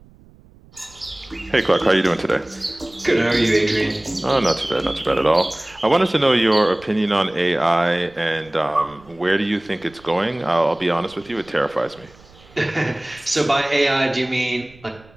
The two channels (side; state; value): right; noise; rumble, 26 dB below the sound